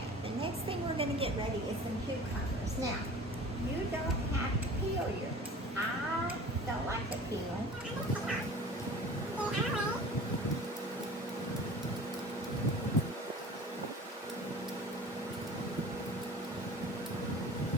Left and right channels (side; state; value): both; normal; correlation 0.42